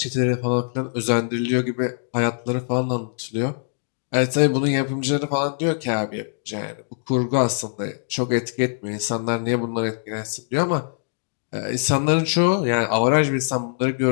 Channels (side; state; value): right; silent; digital silence